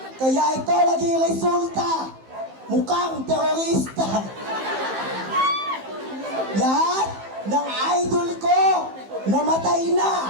Kaya ito naging resulta, mukhang terorista. Lahat ng idol ko namatay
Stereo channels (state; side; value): late; left; 15 ms